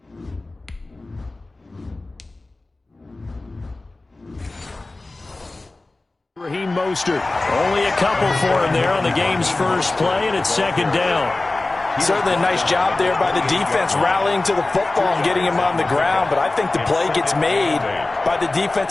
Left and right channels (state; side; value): quieter; right; 3.1 dB